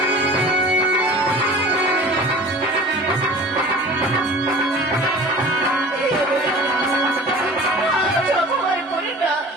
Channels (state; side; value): normal; both; correlation 0.42